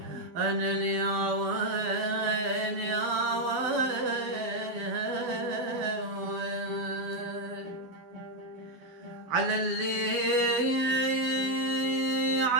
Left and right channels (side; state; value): left; late; 12 ms